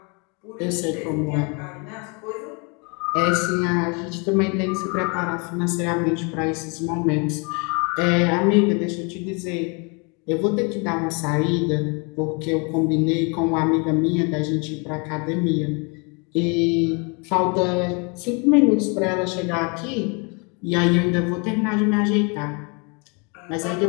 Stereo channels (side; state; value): right; quieter; 32.7 dB